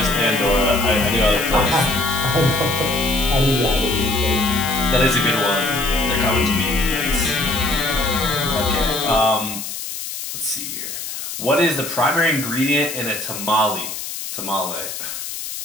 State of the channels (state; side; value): noise; left; hiss, 7 dB below the sound